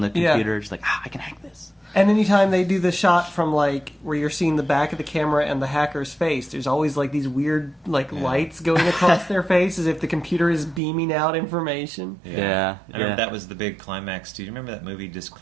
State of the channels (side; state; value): left; drops out; at 10.8 s